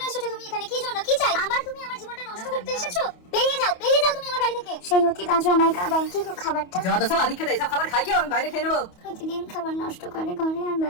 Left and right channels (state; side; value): late; right; 28 ms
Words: এসেছো তুমি এখানে? কি জন্য? কি চাই? তুমি আমার জীবনটা নষ্ট করতে এসেছো? বেরিয়ে যাও তুমি আমার বাড়ি থেকে। সেই অতীত আজও আমায় কাঁদায়। কি গো খাবারটা? যত সব আদিক খেতে, সব খাবার খাই কি আমি বাইরে খেয়ে নেবো। প্রতিদিন খাবার নষ্ট করে ঘরে, আর